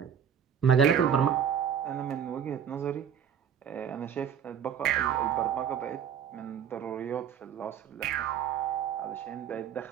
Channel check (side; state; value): left; quieter; 8.3 dB